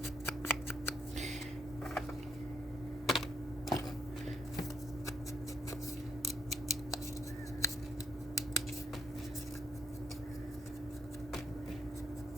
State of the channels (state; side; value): normal; both; correlation 0.70